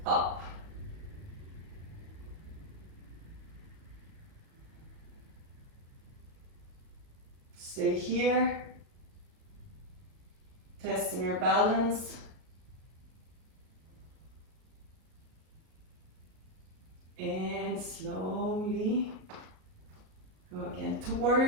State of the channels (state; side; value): late; left; 38 ms